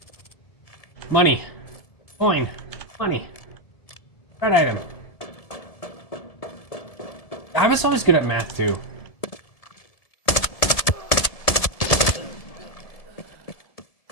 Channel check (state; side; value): late; right; 1.7 ms